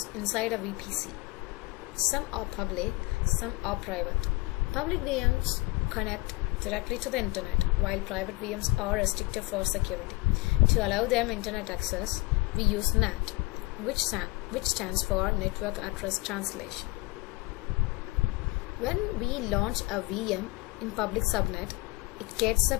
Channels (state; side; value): quieter; right; 23.6 dB